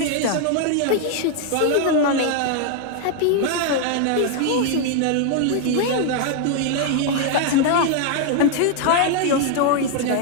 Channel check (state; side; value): different; both; correlation 0.00